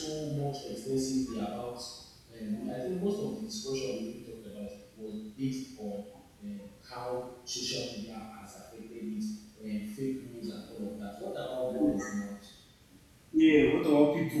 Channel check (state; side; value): identical; both; correlation 1.00